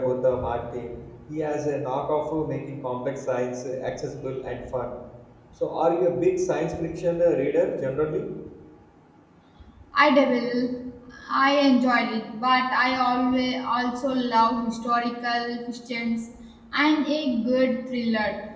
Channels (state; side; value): identical; both; correlation 1.00